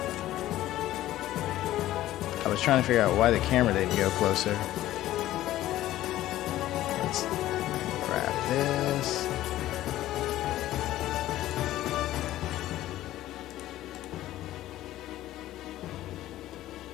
I was trying to figure out why the camera didn't go closer. Let's grab this.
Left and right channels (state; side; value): quieter; right; 14.5 dB